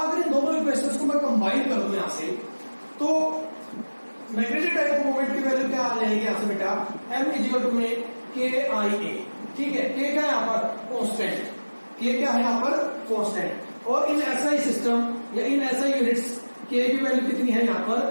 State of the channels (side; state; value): both; inverted; correlation -1.00